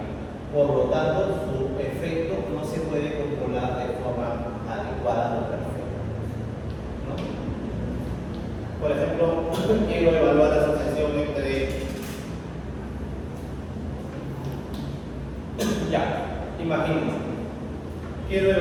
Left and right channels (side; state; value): both; identical; correlation 1.00